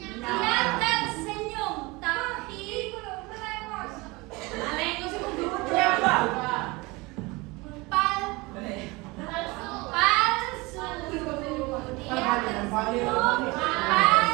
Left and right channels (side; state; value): left; quieter; 24.1 dB